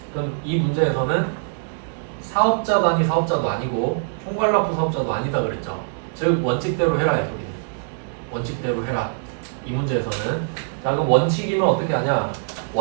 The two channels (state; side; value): silent; left; digital silence